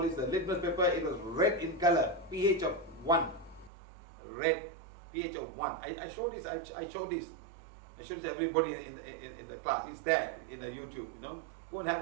this? The litmus paper. It was red in color, pH of 1. Red, pH of 1. I showed this. I showed this. I showed this to everybody in the class. It's there in the YouTube. Go and have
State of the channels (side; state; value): left; drops out; at 3.7 s